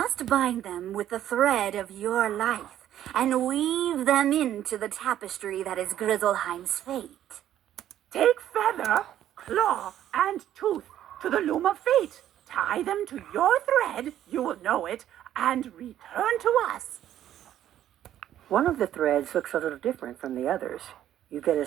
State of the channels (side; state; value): left; quieter; 11.6 dB